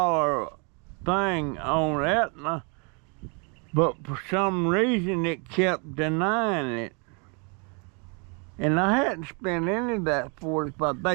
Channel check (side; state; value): left; quieter; 35.1 dB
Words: thing on Aetna, but for some reason it kept denying it. And I hadn't spent any of that $45.